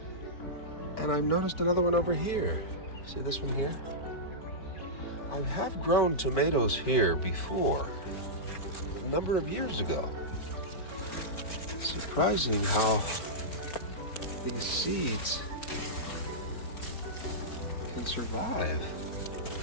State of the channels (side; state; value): right; late; 4.5 ms